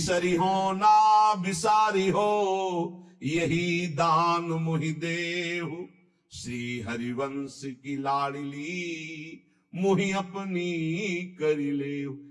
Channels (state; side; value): identical; both; correlation 1.00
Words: हो ना बिसारी हो, यही दान मुहि देहु, श्री हरिवंश की लाडली मुहि अपनी करी ले।